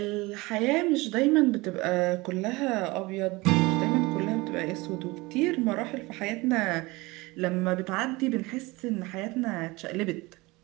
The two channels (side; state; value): left; quieter; 22.8 dB